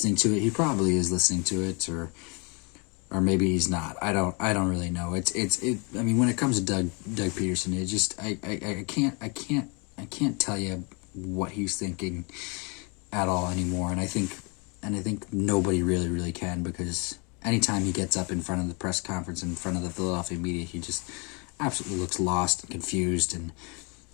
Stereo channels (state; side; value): quieter; right; 32.1 dB